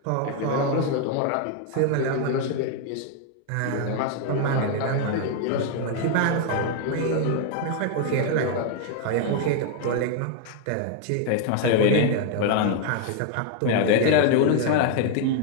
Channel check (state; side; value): different; both; correlation 0.00